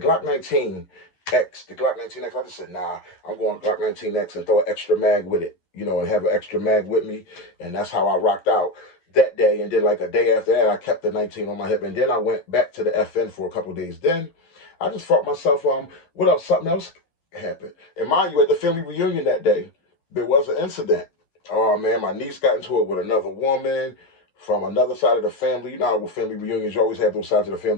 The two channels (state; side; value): late; right; 11 ms